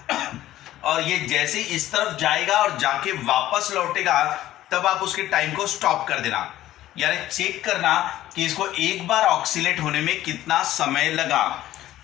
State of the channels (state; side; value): quieter; right; 14.1 dB